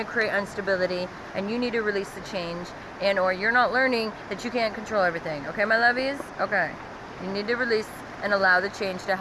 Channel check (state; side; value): identical; both; correlation 1.00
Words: create instability, and you need to release the change, and or you're not learning that you can't control everything. Okay, my lovies? Okay. You need to release and allow the change to